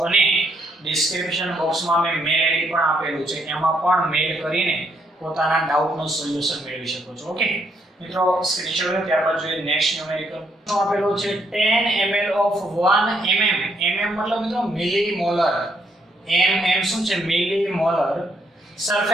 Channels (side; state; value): both; normal; correlation 0.73